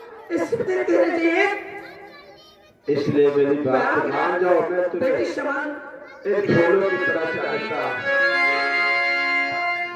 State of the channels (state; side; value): identical; both; correlation 1.00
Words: इसलिए मेरी बात मान जाओ, मैं तुम्हें एक ढोलों की तरह चाहता